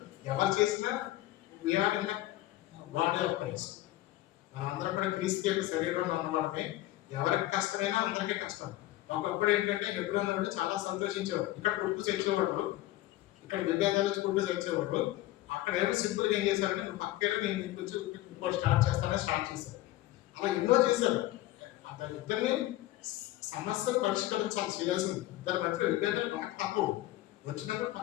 ఎవరు చేసినా we are in the body of Christ. మనందరం కూడా క్రీస్తు యొక్క శరీరంలో ఉన్నవాళ్ళమే. ఎవరికి కష్టమైనా అందరికీ కష్టం. ఒకప్పుడు ఏంటంటే హెబ్రోన్ వాళ్ళు చాలా సంతోషించేవాడు. ఇక్కడ కొట్టు తెచ్చేవాడు, ఇక్కడ విభేదాలు కొట్టు తెచ్చేవాడు. అక్కడ ఏమో సింపుల్గా ఏం చేశారంటే నువ్వు పక్కన నేను ఇంకొంచెం ఇంకో స్టార్ట్ చేశారు. అలా ఎన్నో చేశారు. ఇద్దరిని సమస్యను పరిష్కరించాలి, చేయాల్సింది. ఇద్దరి మధ్య విభేదాలు బాగా తప్పవు. వచ్చినప్పుడు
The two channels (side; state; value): right; quieter; 16.1 dB